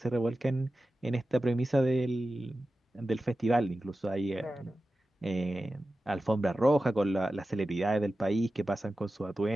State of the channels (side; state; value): both; normal; correlation 0.94